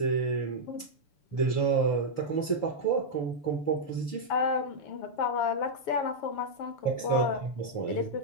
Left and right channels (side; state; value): right; late; 6.9 ms